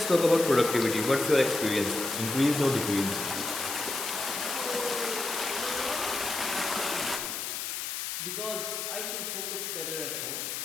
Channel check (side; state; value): left; noise; hiss, 4 dB below the sound